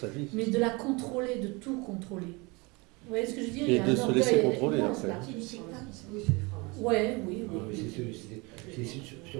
vie. mais de la contrôler, de tout contrôler. Vous voyez ce que je veux dire? Et Il y a de un se orgueil laisser contrôler, immense, après. là. Oui, Ouais, oui, oui. c'est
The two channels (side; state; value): left; quieter; 26.7 dB